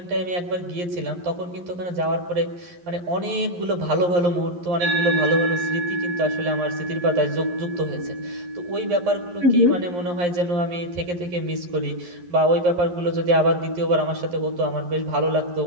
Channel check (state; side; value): late; left; 11 ms